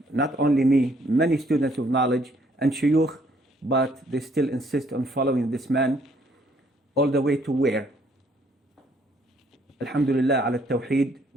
not only me, many students of knowledge and shuyukh, but they still insist on following this man all the way to where? Alhamdulillah ala tawheed.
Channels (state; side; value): normal; both; correlation 0.66